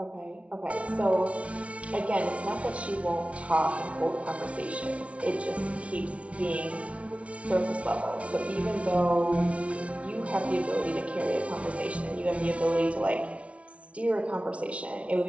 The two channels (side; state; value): left; late; 0.063 ms